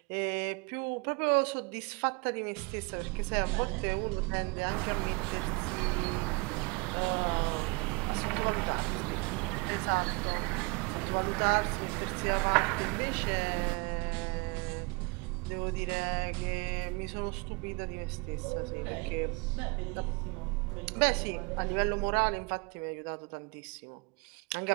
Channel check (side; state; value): left; quieter; 29.0 dB